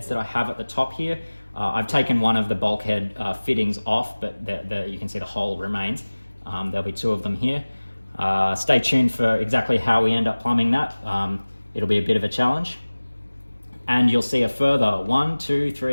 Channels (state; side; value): inverted; both; correlation -1.00